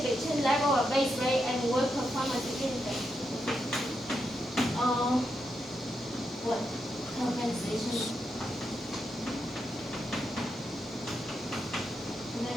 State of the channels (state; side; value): normal; both; correlation 0.84